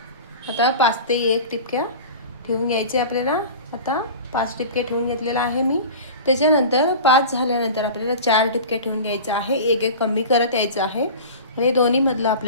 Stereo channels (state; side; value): inverted; both; correlation -0.34